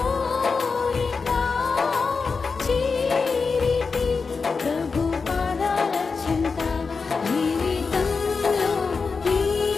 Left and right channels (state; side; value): quieter; right; 4.8 dB